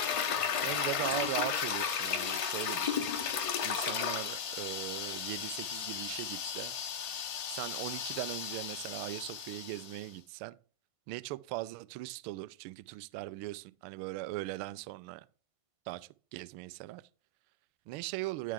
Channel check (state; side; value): late; left; 1.5 ms